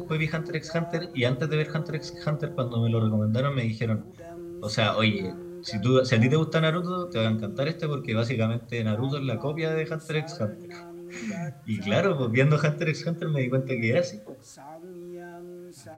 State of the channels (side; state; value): both; identical; correlation 1.00